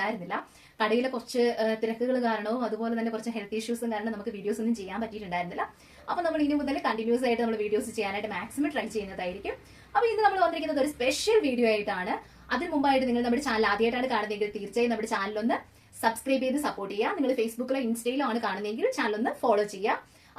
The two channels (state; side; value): identical; both; correlation 1.00